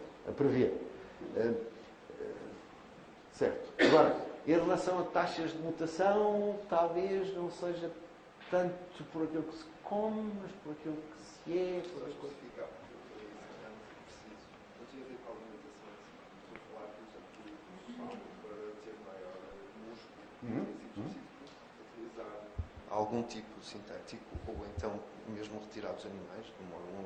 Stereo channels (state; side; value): identical; both; correlation 1.00